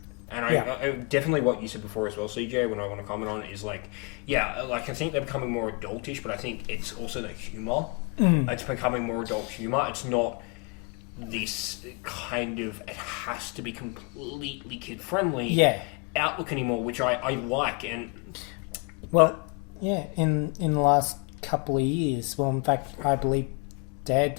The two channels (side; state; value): right; quieter; 31.9 dB